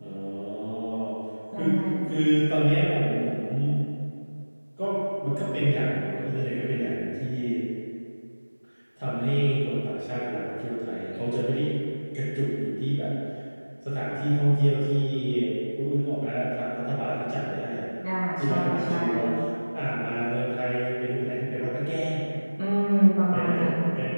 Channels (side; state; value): both; inverted; correlation -1.00